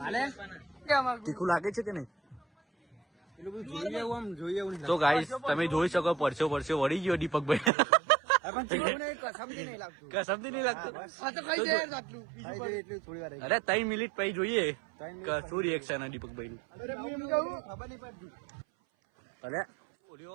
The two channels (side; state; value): left; drops out; at 7.7 s